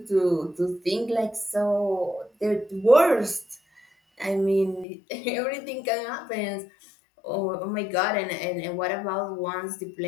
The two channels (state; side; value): drops out; right; at 4.9 s